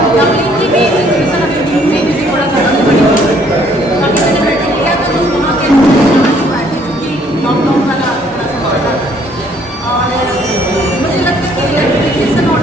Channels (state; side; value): normal; both; correlation 0.63